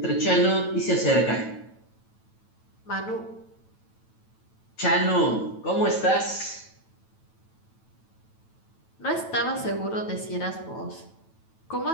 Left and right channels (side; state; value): right; late; 9.1 ms